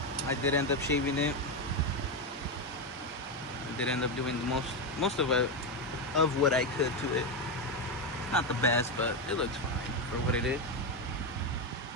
I did end up shaving it. I did end up doing the most of what I could to it. Not the best, but it looks fine for what it is.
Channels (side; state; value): both; normal; correlation 0.09